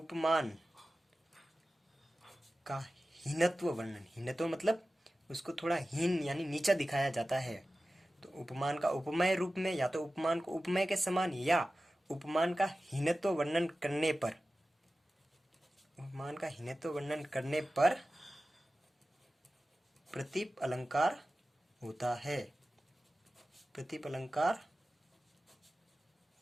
का हीनत्व वर्णन। हीनत्व मतलब उसको थोड़ा हीन यानी नीचा दिखाया जाता है। तो उपमान का उपमेय रूप में, या तो उपमान को उपमेय के समान, या उपमान का हीनत्व वर्णन करने पर, उपमान का हीनत्व वर्णन करने पर प्रतिप अलंकार होता है, प्रतिप अलंकार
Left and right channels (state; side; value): normal; both; correlation 0.95